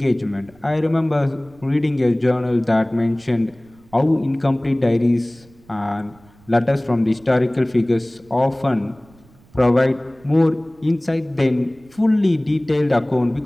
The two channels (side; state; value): right; noise; rumble, 28 dB below the sound